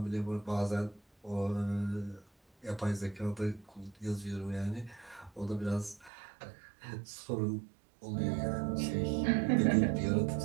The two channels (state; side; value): drops out; left; at 6.1 s